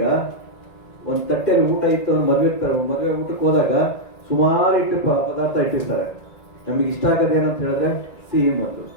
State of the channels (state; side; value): late; right; 1.9 ms